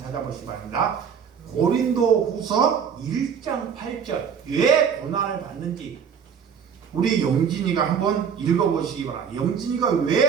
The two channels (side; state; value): left; quieter; 7.1 dB